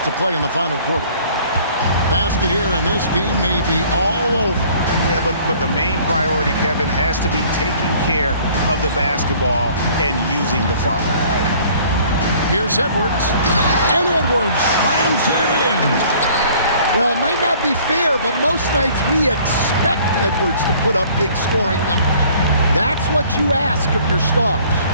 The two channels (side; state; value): both; inverted; correlation -0.54